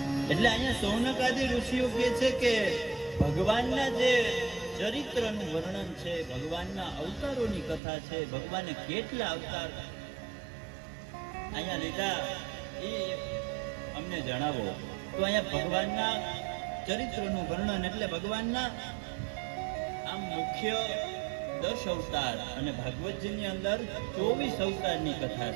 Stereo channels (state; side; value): drops out; left; at 7.8 s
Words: એટલે અહીંયા સૌનકાદી ઋષિઓ કહે છે કે ભગવાનના જે ચરિત્રનું વર્ણન છે, ભગવાનના અવતારોની કથા છે, ભગવાને કેટલા અવતાર અહીંયા લીધા એ અમને જણાવો. તો અહીંયા ભગવાનના ચરિત્રનું વર્ણન એટલે ભગવાનના આમ મુખ્ય 10 અવતાર અને ભાગવતજીની અંદર 24 અવતારની કથા